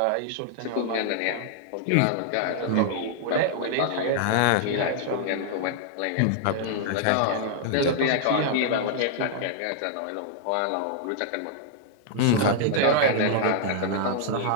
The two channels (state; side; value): different; both; correlation -0.01